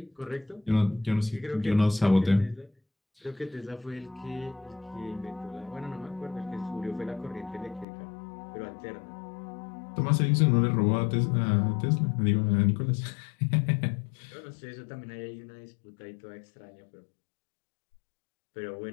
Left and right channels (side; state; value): right; drops out; at 7.9 s